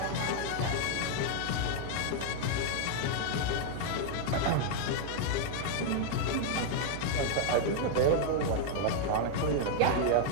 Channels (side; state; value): both; different; correlation 0.00